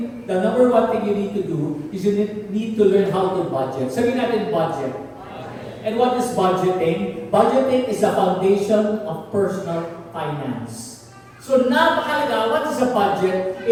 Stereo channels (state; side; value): identical; both; correlation 1.00